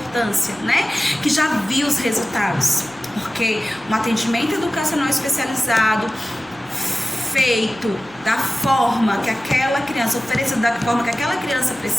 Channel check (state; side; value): noise; right; rumble, 26 dB below the sound